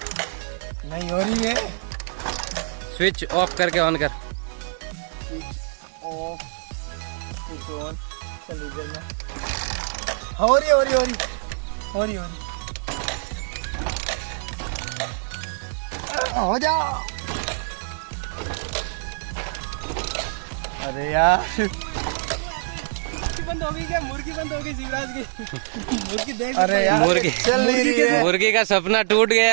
नहीं हो रही है। स्विच ऑफ करके ऑन कर। Of, switch on. चल इधर में हो रही हो जा। अरे यार बंद हो गई क्या? मुर्गी बंद हो गई शिवराज की। मुर्गी देख, अरे यार मुर्गी चल नहीं रही है। मुर्गी का सपना टूट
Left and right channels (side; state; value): left; silent; digital silence